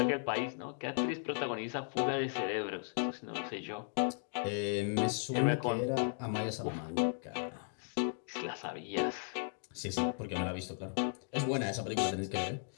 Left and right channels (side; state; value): right; silent; digital silence